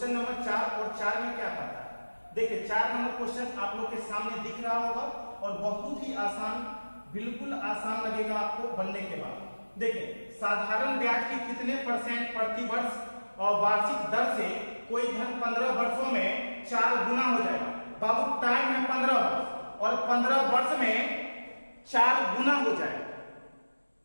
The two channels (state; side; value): inverted; both; correlation -1.00